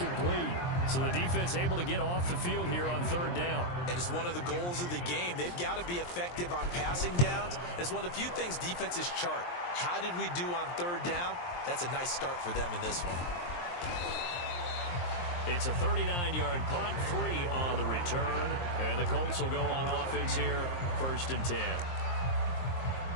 So the defense able to get off the field here on 3rd down. And it's one of the goals of the game. They've got to be effective on passing downs. It's one of the few things defenses chart. How did we do on 3rd down? That's a nice start for them in this one. It's a 39-yard punt, 3 on the return. And the Colts will go on offense here, 1st and 10.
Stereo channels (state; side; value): late; right; 23 ms